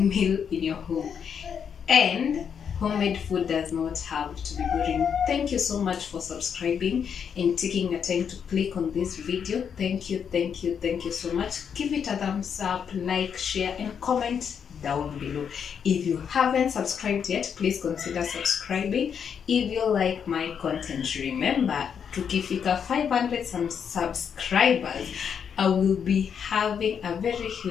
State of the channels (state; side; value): quieter; right; 7.4 dB